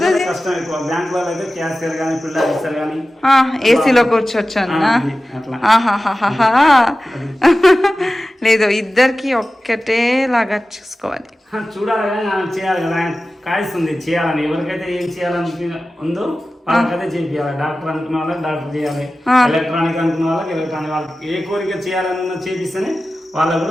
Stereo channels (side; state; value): both; normal; correlation 0.95